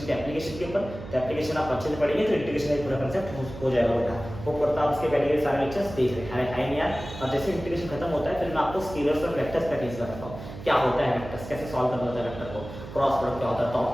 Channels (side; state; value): right; noise; hum, 12 dB below the sound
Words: के एप्लीकेशन के ऊपर, तो एप्लीकेशन आप अच्छे से पढ़ेंगे तो इंटीग्रेशन का पूरा कंसेप्ट हो जाएगा बेटा, वो करता आप उसके पहले के सारे लेक्चर्स देख रहे हैं यार। और जैसे इंटीग्रेशन खत्म होता है फिर मैं आपको स्केलर्स और वेक्टर्स का टीच करता हूँ, क्या होता है वेक्टर्स, कैसे सॉल्व करना होता है वेक्टर को, क्रॉस प्रोडक्ट क्या होता है, डॉट